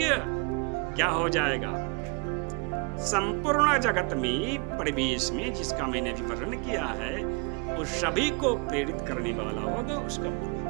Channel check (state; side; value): quieter; left; 33.0 dB